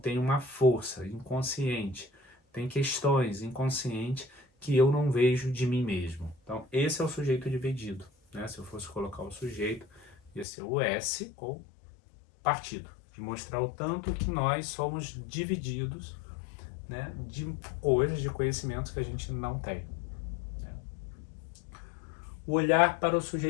uma força inconsciente, tem questões inconscientes que eu não vejo de mim mesmo. Então esse é o sujeito dividido, né? Se eu fosse colocar o sujeito, ia ser o S ou partido, de mostrar o tanto que nós somos divididos, né, de coisas, de conhecimentos que a gente não tem. Né? O olhar para o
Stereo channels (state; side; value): drops out; right; at 10.5 s